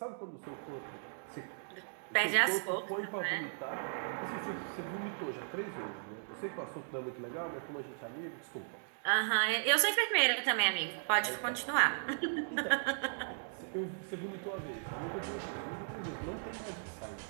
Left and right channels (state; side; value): silent; left; digital silence